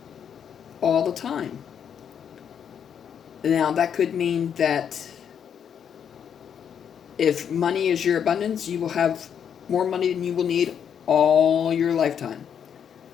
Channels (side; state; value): right; quieter; 8.1 dB